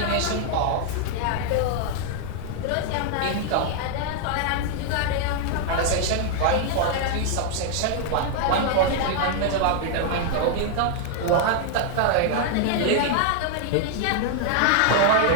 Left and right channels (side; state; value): both; different; correlation -0.01